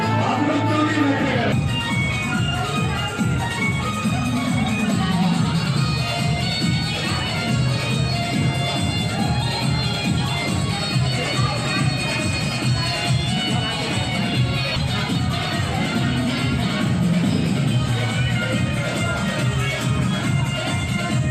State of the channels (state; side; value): identical; both; correlation 1.00